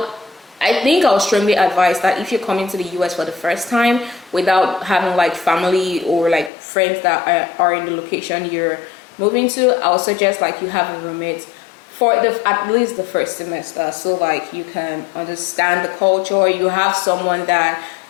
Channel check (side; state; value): right; drops out; at 6.5 s